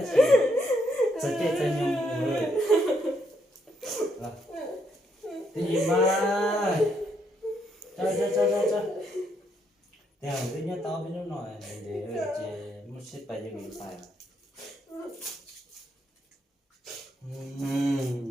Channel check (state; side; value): normal; both; correlation 0.75